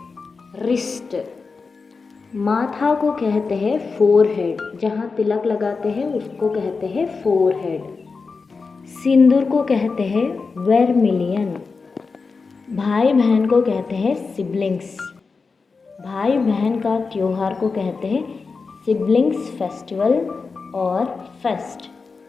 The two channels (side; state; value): right; quieter; 4.6 dB